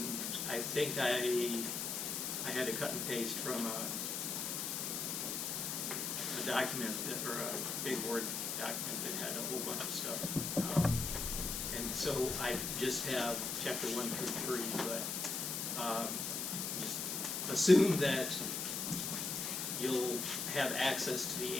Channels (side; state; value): left; noise; hiss, 2 dB below the sound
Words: I think I had to cut and paste from a document or a big Word document that had a whole bunch of stuff. And so I just have chapter 1 through 3, but just assume that you'll have access to the